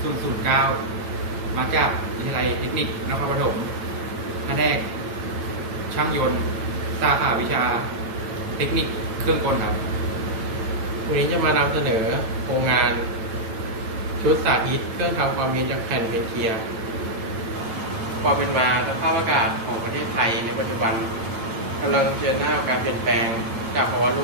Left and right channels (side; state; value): left; late; 9.0 ms